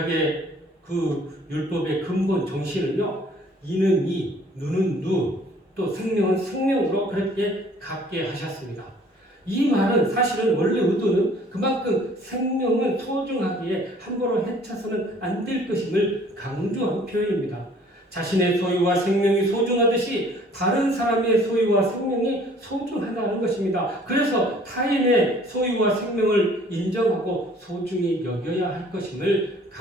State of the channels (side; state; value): both; normal; correlation 0.55